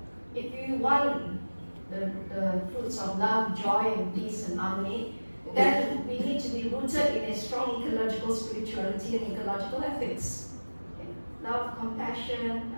If you want the fruits of love, joy, and peace and harmony, then we need to be rooted in a strong ecological spirituality and ecological ethics. Okay. Love, compassion,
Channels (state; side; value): inverted; both; correlation -1.00